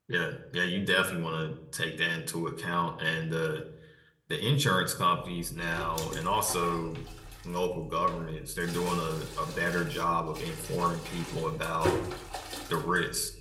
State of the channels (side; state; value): both; identical; correlation 1.00